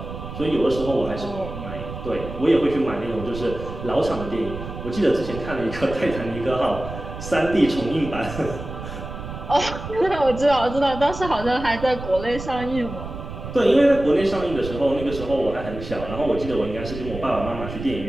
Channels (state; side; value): noise; right; rumble, 10 dB below the sound